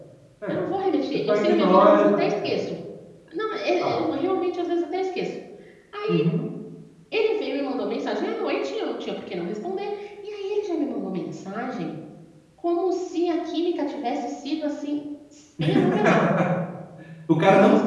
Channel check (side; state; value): both; identical; correlation 1.00